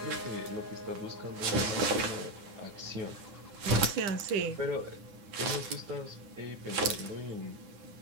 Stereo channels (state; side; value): late; left; 9.7 ms